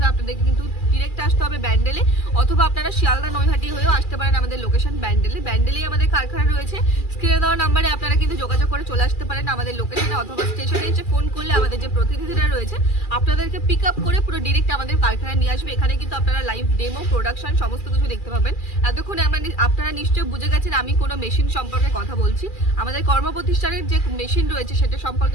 আপনাদেরকে কিন্তু ডিরেক্ট আসতে হবে ব্যান্ডেলে, অথবা আপনারা শিয়ালদা নৈহাটি হয়েও আসতে পারেন। আমাদের লোকেশন ব্যান্ডেলেই আমাদের কারখানা রয়েছে। স্ক্রিনে দেওয়া নাম্বারে আপনারা কিন্তু যোগাযোগ করে চলে আসতে পারেন আমাদের লোকেশনে, অথবা স্টেশনে এসে ফোন করলে আমাদের যে প্রতিনিধিরা রয়েছে আপনাদেরকে পিক আপ করে পুরো ডিরেক্ট আমাদের কারখানায় নিয়ে আসবে। এখানে কিন্তু আপনারা লাইভ ডেমো, প্রোডাকশন সমস্ত কিছু দেখতে পাবেন। এতক্ষণে আপনারা নিশ্চয়ই বুঝে গেছেন আমি কোনো মেশিন সম্পর্কে কথা বলছি। আমাদের কর্মপ্রতিষ্ঠানের যে মেশিন রয়েছে সেটা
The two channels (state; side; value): late; right; 2.4 ms